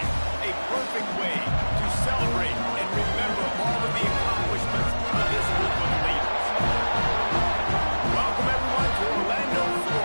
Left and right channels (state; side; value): inverted; both; correlation -1.00